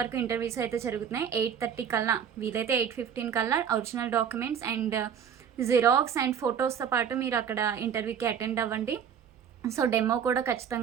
వరకు ఇంటర్వ్యూస్ అయితే జరుగుతున్నాయి. 8:30 కల్లా, వీలైతే 8:15 కల్లా original documents and xerox and ఫొటోస్తో పాటు మీరు అక్కడ ఇంటర్వ్యూకి అటెండ్ అవ్వండి. సో డెమో కూడా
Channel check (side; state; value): left; quieter; 8.1 dB